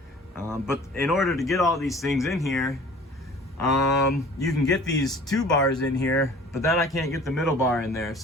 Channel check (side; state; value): both; normal; correlation 0.47